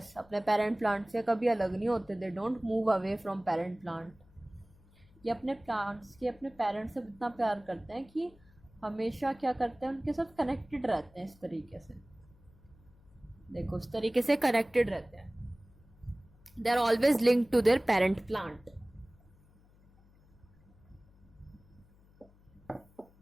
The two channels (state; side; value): noise; left; hum, 28 dB below the sound